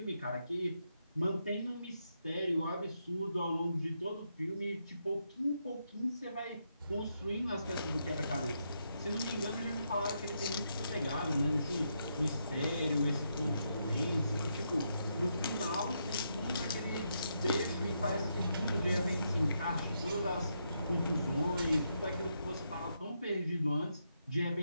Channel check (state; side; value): inverted; both; correlation -0.80